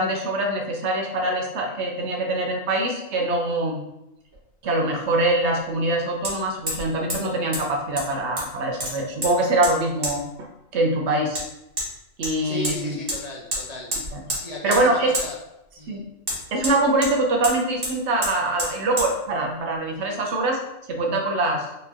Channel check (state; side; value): late; left; 2.7 ms